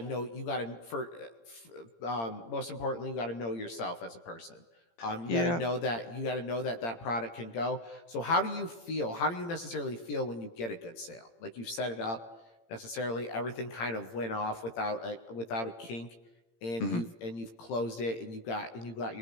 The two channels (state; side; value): late; right; 18 ms